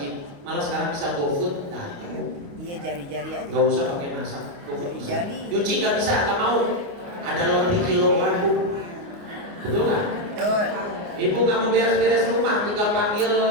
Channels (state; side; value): late; left; 29 ms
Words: malah sekarang bisa GoFood. Nah, iya jari-jari aja. Nggak usah pakai masak. Jari-jari. Nyuci nggak bisa, nggak mau. Ada lebih kilogram, Bu. Betul nggak? Betul. Ibu nggak mau beres-beres rumah, tinggal panggil